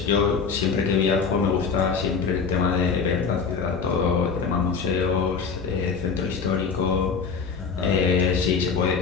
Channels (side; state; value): right; quieter; 5.6 dB